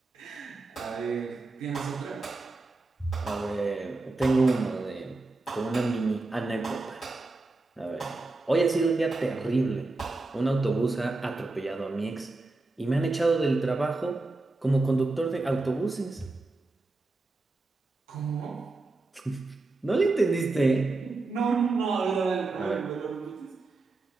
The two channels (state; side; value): quieter; left; 3.3 dB